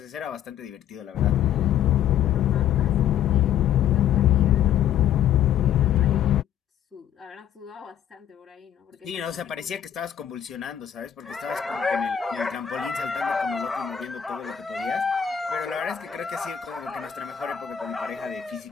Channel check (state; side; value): quieter; right; 9.8 dB